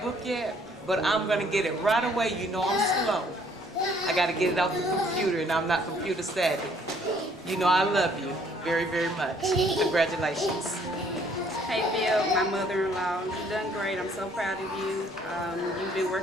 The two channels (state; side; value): normal; both; correlation 0.62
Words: book yet, but I'm gonna get it right away. You know I'm slow. I gotta get it off the computer, and I'm not computer savvy. You know I love you very, very much. Congratulations. Hey Phil, my mother-in-law, you've done great. I'm so proud of you. You've been